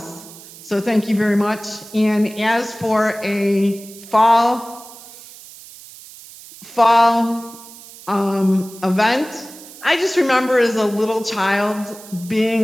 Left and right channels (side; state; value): right; noise; hiss, 18 dB below the sound